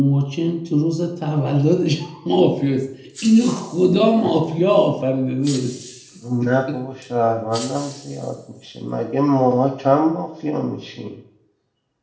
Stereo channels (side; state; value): both; identical; correlation 1.00